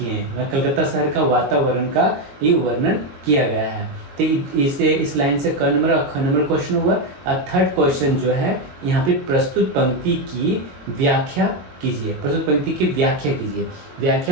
हैं। कलकत्ता शहर का वातावरण का ये वर्णन किया गया है। तो इस लाइन से क नंबर और ख नंबर क्वेश्चन हुआ। और थर्ड क्वेश्चन जो है यहाँ पे प्रस्तुत पंक्ति की व्याख्या कीजिए। प्रस्तुत पंक्ति की व्याख्या कीजिए।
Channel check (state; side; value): late; left; 22 ms